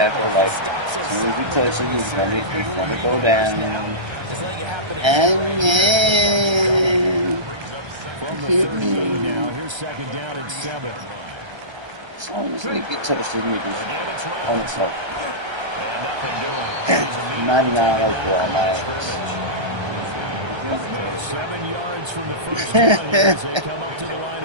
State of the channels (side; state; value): left; late; 1.3 ms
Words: Like, as soon as he touches him, he's gonna go down. And then from the 38 now, here's 2nd down and 7. As long as they get touched, his niggas on the top. And nothing doing. 99 overall, man. So 7 yards from the first down here as they come up to the